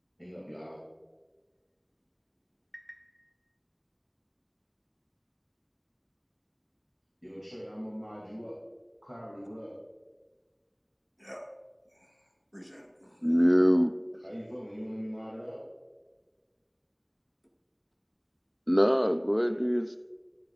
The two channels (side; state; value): both; identical; correlation 1.00